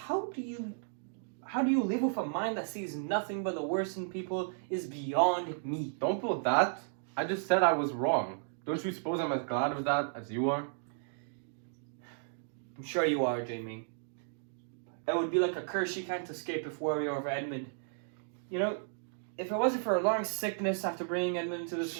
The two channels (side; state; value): left; silent; digital silence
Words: do you live with a mind that sees nothing but the worst in people is beyond me. Don't pull that. I just said I was wrong. Don't you suppose I'm as glad of that as you are? I'm sure you are, Jamie. It would be like a curse you can't escape if worry over Edmund. You know, if it wasn't for a long sickness after bringing Edmund into this